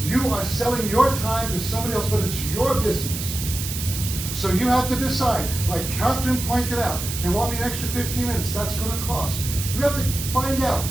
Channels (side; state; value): right; noise; hiss, 6 dB below the sound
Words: You are selling your time to somebody else, but it's your business. So you have to decide, like Catherine pointed out, they want me an extra 15 minutes, that's gonna cost. You have to find out,